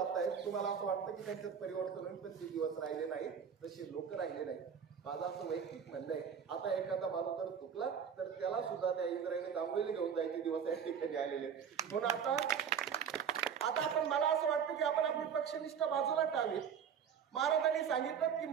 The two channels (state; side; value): quieter; left; 7.5 dB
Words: तुम्हाला असं वाटतं की त्यांच्यात परिवर्तन होईल पण ते दिवस राहिले नाही, तसे लोक राहिले नाही. माझं असं वैयक्तिक म्हणणं आहे आता एखादा माणूस जर चुकला तर त्याला सुद्धा त्या इंद्रायणी आंघोळीला घेऊन जायचे दिवस या ठिकाणी आलेले. म्हणून आता आपण मला असं वाटतं की आपण आपली पक्षनिष्ठ बाजूला टावीत. महाराजांनी सांगितलं की